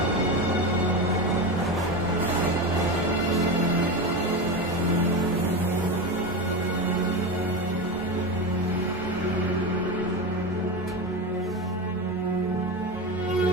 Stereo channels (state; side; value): normal; both; correlation 0.20